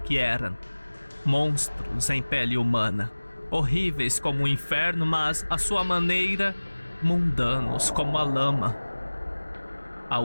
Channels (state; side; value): inverted; both; correlation -1.00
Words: eram. Monstros em pele humana, horríveis como o inferno, mas à sua maneira, mundanos como a lama. A